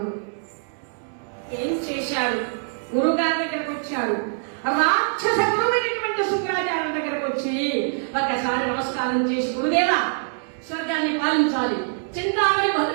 ఏం చేశాడు? గురుగారి దగ్గరకు వచ్చాడు. రాక్షస గురువైనటువంటి శుక్రాచార్య దగ్గరకు వచ్చి ఒకసారి నమస్కారం చేసి, గురుదేవా స్వర్గాన్ని పాలించాలి, చింతామణి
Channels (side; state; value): left; silent; digital silence